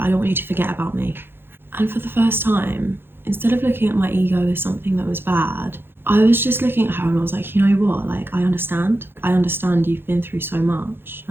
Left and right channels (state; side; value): late; left; 0.10 ms